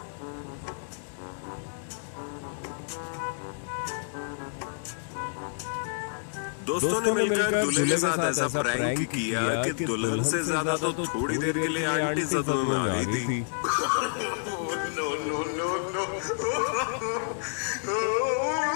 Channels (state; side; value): silent; right; digital silence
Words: दोस्तों ने मिलकर दूल्हे के साथ ऐसा प्रैंक किया कि दुल्हन से ज्यादा तो थोड़ी देर के लिए आंटी सदमे में आ गई थी। No no no no.